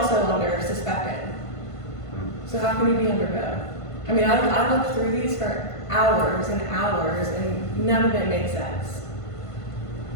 under suspected. So how can you be under both? I mean, I looked through these for hours and hours, and none of it makes sense.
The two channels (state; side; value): late; right; 1.5 ms